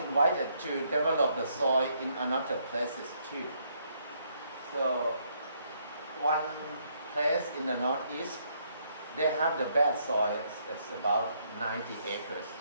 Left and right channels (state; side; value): inverted; both; correlation -0.72